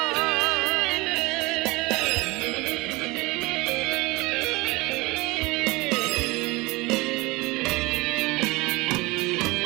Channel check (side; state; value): left; quieter; 23.2 dB